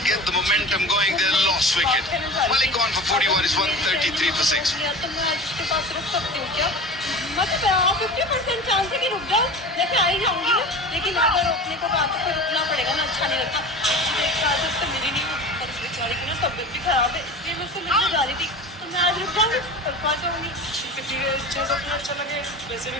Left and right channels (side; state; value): both; normal; correlation 0.34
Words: get the momentum going, they lost wicket. Malik on for 41 is 133 for 6. मतलब 50% chance है कि रुक जाओ, जैसे आ ही जाऊंगी ना, लेकिन अगर रोकने को बात तो फिर रुकना पड़ेगा ना, अच्छा नहीं लगता। एक साथ उससे मिली नहीं और उस बेचारी की ना तबीयत भी खराब है, इसलिए मैं उससे मिलने जा रही थी, तो मैं आज रुक जाऊंगी, कल पा जाऊंगी। चलो अपना अच्छा लगे, वैसे भी